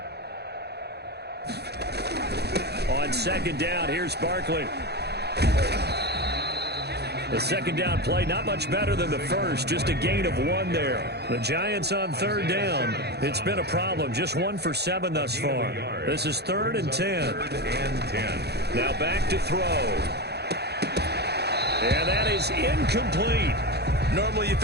On 2nd down, here's Barkley. The 2nd down play, not much better than the first, just a gain of 1 there. The Giants on 3rd down. It's been a problem, just 1 for 7 thus far. This is 3rd and 10. Now back to throw. And that is incomplete. Normally you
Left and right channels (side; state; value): left; late; 0.48 ms